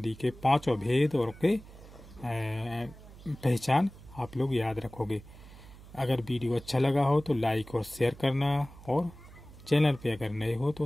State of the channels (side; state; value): right; noise; hum, 19 dB below the sound